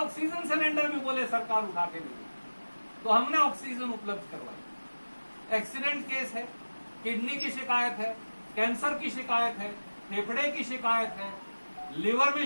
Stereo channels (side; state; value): both; inverted; correlation -1.00